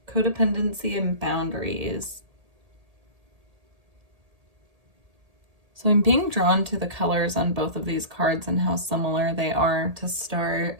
codependency, and boundaries. So I'm being drawn to the colors on both of these cards and how similar they are to start.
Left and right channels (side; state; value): left; late; 1.8 ms